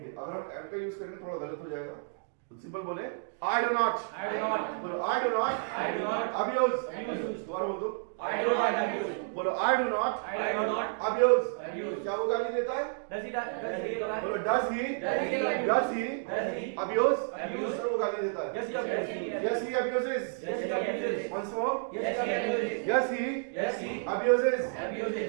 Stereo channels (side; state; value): left; silent; digital silence